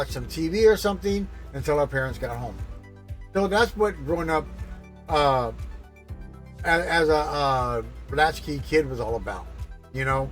some TV or something until our parents got home. So that's what growing up as a latchkey kid was all about,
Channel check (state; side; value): identical; both; correlation 1.00